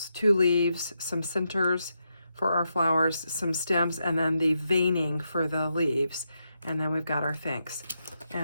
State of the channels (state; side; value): inverted; both; correlation -0.84